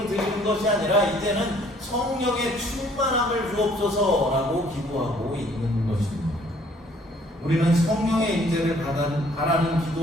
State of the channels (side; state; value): both; normal; correlation 0.60